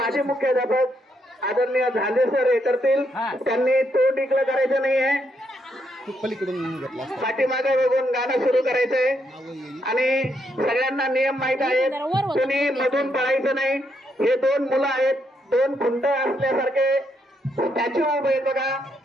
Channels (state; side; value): normal; both; correlation 0.77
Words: मुख्याध्यापक आदरणीय झाले सर हे करतील। त्यांनी तोंड इकडं करायचं नाहीये, पलीकडून घेतला पाठीमागे बघून गाणं सुरू करायचंय आणि सगळ्यांना नियम माहित आहेत, कोणी मधून पळायचं नाही। हे दोन मुलं आहेत, दोन खुंट असल्यासारखे स्टॅच्यू उभे आहेत बघा।